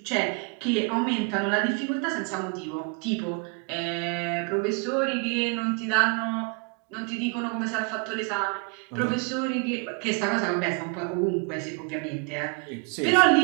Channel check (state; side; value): quieter; left; 33.9 dB